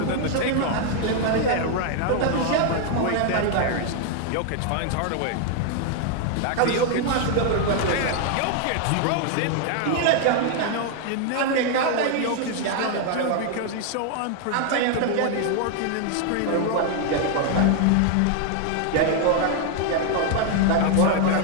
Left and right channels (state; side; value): different; both; correlation 0.00